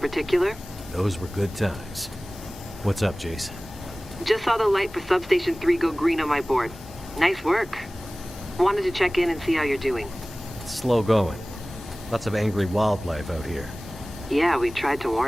Those were good times. What's up, Jace? Just saw the light for Substation 3 go green on my board. Nice work. Wanted to check in and see how you're doing. It's slow going. Lots of angry wildlife out here. Yeah, we tried to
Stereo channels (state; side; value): normal; both; correlation 0.98